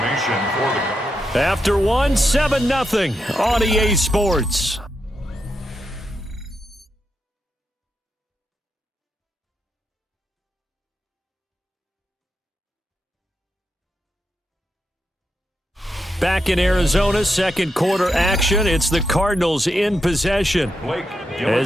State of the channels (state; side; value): normal; both; correlation 0.84